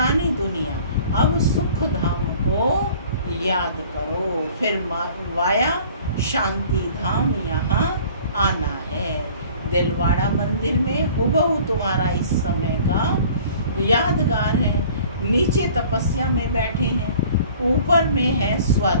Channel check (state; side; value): inverted; both; correlation -0.49